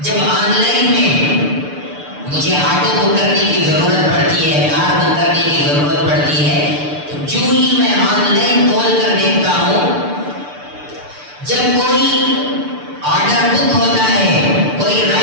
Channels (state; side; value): late; left; 6.8 ms